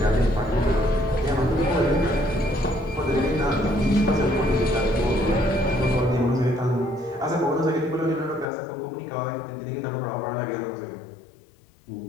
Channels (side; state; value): right; drops out; at 8.5 s